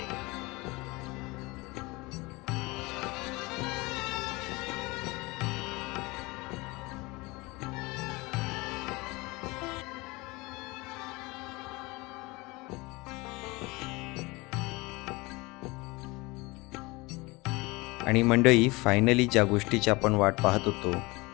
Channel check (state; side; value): quieter; right; 23.7 dB